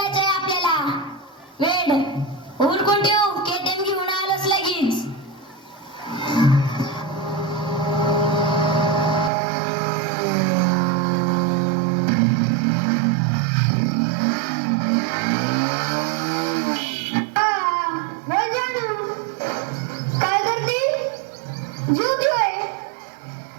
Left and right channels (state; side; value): drops out; left; at 9.3 s